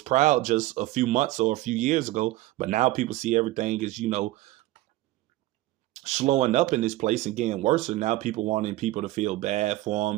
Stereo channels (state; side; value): quieter; left; 17.4 dB